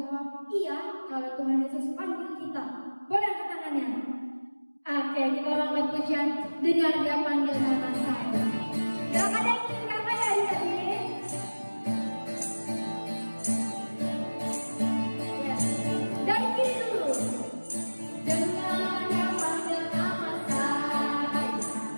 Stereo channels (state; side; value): inverted; both; correlation -1.00